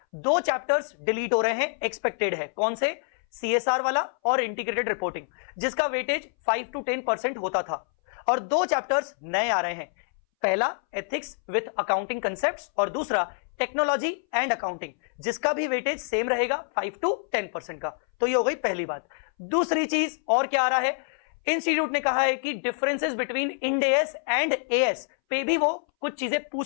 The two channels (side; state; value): right; silent; 60 dB below the other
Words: 2 चैप्टर्स डिलीट हो रहे हैं, एक्सपेक्टेड है। कौन से, सीएसआर वाला और इंटीग्रेटेड रिपोर्टिंग, जिसका वेटेज 5 to 10% होता था, और 2 चैप्टर्स नए आ रहे हैं। पहला एथिक्स विथ अकाउंटिंग कंसेप्ट्स और दूसरा टेक्नोलॉजी एंड अकाउंटिंग, जिसका भी वेटेज सेम रहेगा 5 to 10% का। तो ये हो गई पहली बात। दूसरी चीज और क्या आ रहा है, इंस्टीट्यूट ने कहा है कि डिफरेंसेस बिटवीन इंडेस एंड एएस पे भी वो कुछ चीजें पूछ